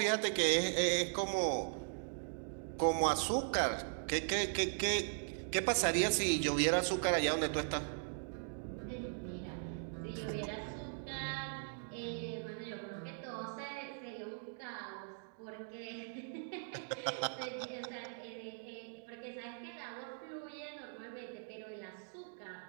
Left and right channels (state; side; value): silent; left; digital silence